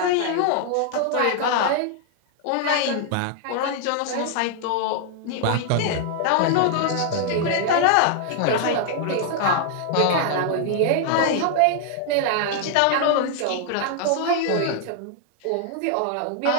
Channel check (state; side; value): different; both; correlation 0.00